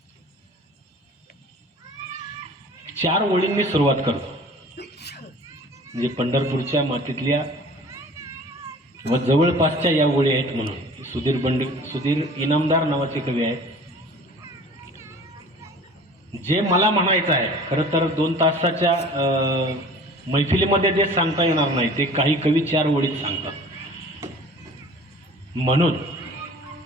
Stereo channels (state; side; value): normal; both; correlation 0.45